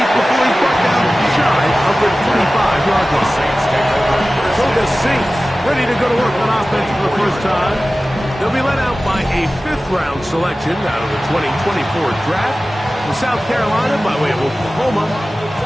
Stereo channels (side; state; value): both; normal; correlation 0.96